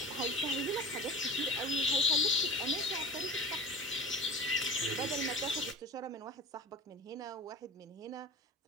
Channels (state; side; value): normal; both; correlation 0.36